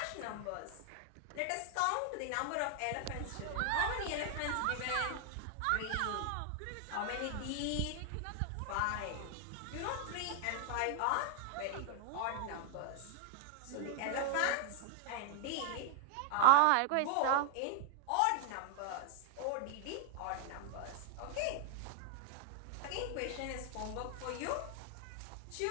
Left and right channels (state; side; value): different; both; correlation 0.00